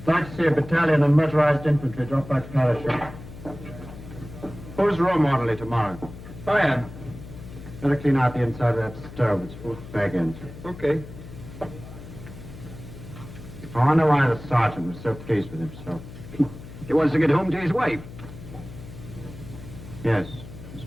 Like to see a battalion of motorized infantry drop by parachute. Who's role orderly tomorrow? I am. Better clean out the inside of that stove. It's full of bag ends. Okay. Oh, I know why the sergeant was so pleased with himself. He wants to get home to his wife. Yes, I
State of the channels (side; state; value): left; noise; hum, 14 dB below the sound